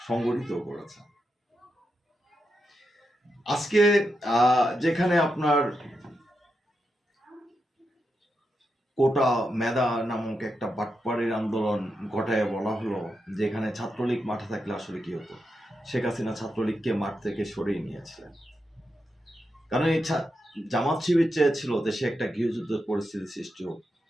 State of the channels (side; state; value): both; normal; correlation 0.86